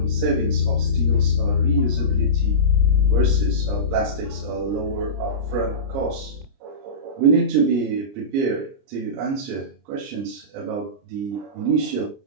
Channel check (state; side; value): late; left; 30 ms